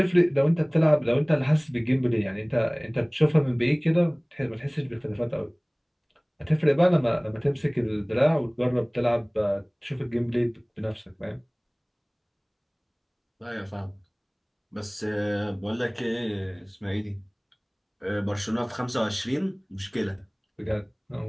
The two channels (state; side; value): identical; both; correlation 1.00